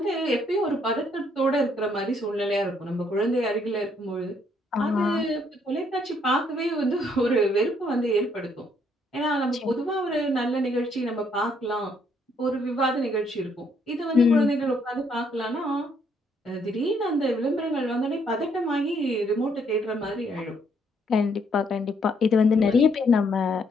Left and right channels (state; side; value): normal; both; correlation 0.69